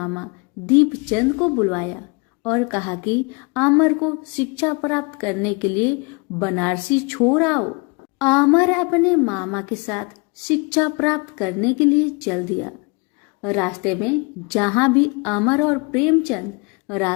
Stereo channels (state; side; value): quieter; right; 30.6 dB